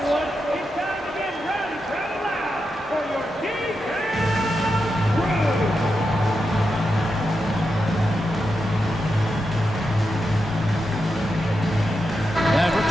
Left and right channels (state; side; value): normal; both; correlation 0.87